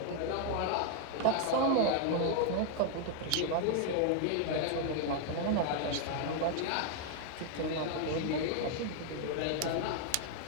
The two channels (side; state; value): both; different; correlation 0.00